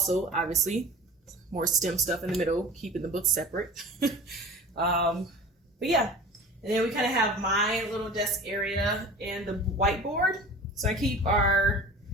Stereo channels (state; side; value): normal; both; correlation 0.39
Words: obviously, more STEM stuff in the middle, keeping the books separate. But yeah, and then we kind of have my little desk area and the whiteboard. So I keep our